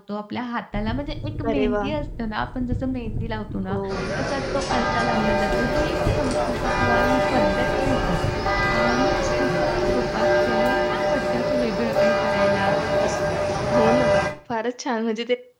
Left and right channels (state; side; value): identical; both; correlation 1.00